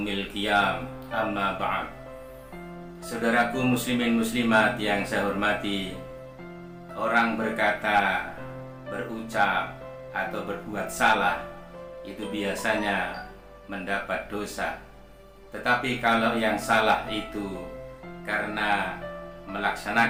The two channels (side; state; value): both; identical; correlation 1.00